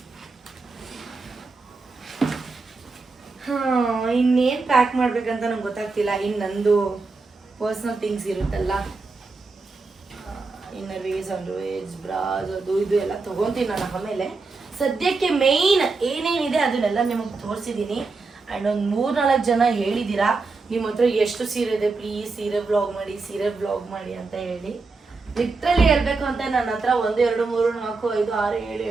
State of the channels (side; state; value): left; quieter; 4.0 dB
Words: ಇನ್ನೇನು ಪ್ಯಾಕ್ ಮಾಡ್ಬೇಕಂತ ನಂಗೆ ಗೊತ್ತಾಗ್ತಿಲ್ಲ. ಇನ್ನು ನಂದು ಪರ್ಸ್ನಲ್ ಥಿಂಗ್ಸ್ ಇರುತ್ತಲ್ಲ, inner wears, under wears, bras, ಅದು ಇದು ಎಲ್ಲ ತೊಗೊತೀನಿ ನಾನು ಆಮೇಲೆ. ಸದ್ಯಕ್ಕೆ ಮೇಯ್ನ್ ಏನೇನಿದೆ ಅದನ್ನೆಲ್ಲ ನಿಮಗೆ ತೋರಿಸಿದ್ದೀನಿ. ಆ್ಯಂಡ್ ಒಂದು 3-4 ಜನ ಹೇಳಿದ್ದೀರಾ ನಿಮ್ಮ ಹತ್ರ ಎಷ್ಟು ಸೀರೆ ಇದೆ, ಪ್ಲೀಸ್ ಸೀರೆ ಬ್ಲಾಗ್ ಮಾಡಿ ಅಂತ ಹೇಳಿ. ಲಿಟ್ರಲಿ ಹೇಳ್ಬೇಕು ಅಂತ ನನ್ನ ಹತ್ರ 1, 2, 3, 4, 5, 6, 7,